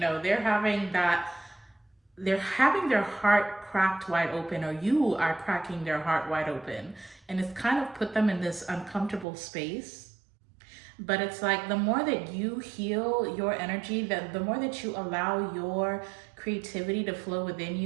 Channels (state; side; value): drops out; left; at 9.2 s